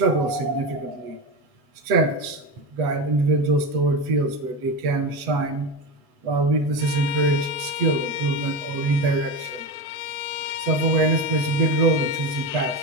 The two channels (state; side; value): late; left; 8.0 ms